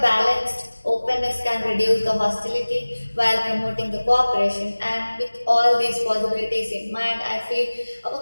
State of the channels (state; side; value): inverted; both; correlation -1.00